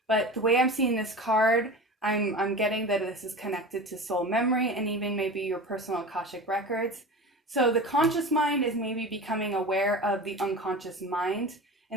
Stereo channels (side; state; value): both; normal; correlation 0.32